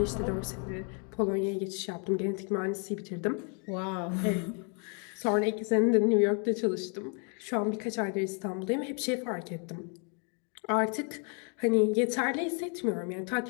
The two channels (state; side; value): quieter; right; 38.6 dB